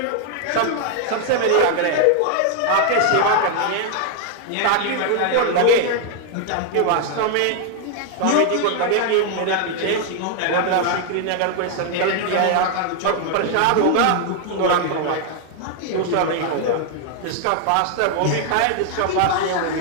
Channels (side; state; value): both; different; correlation 0.00